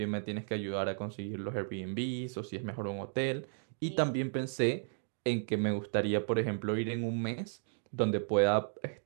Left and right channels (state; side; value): silent; left; digital silence